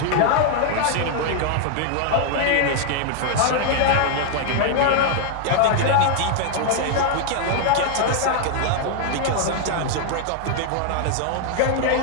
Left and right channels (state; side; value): different; both; correlation 0.00